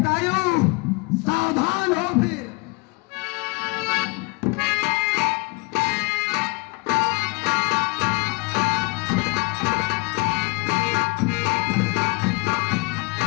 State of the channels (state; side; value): quieter; right; 26.9 dB